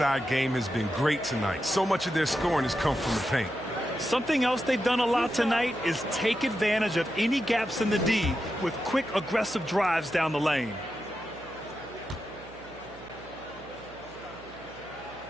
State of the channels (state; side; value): noise; right; hum, 22 dB below the sound